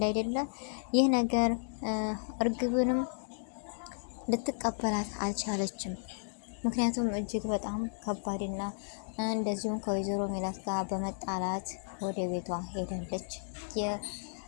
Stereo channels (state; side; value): silent; right; digital silence